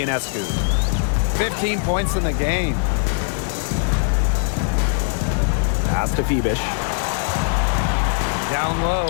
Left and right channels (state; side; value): silent; right; digital silence